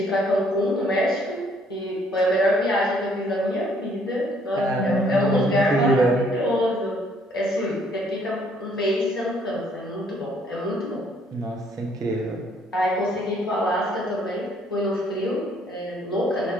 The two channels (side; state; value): both; normal; correlation 0.64